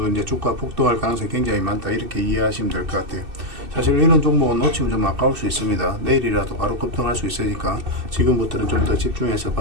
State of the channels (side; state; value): left; late; 2.6 ms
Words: 이제 주가 폭등할 가능성이 굉장히 많다, 이렇게 이해하시면 될 것 같아요. 사실 이런 종목은 놓치면 좀 아까울 수 있습니다. 내일이라도 바로 급등할 수 있으니까 지금부터는 좀 더 집중해서